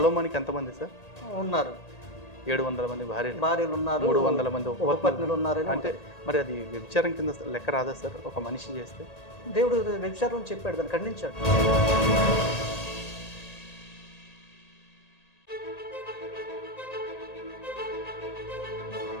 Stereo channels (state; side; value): late; right; 1.8 ms